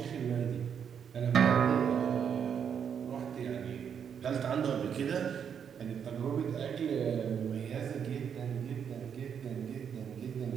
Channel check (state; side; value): quieter; left; 7.7 dB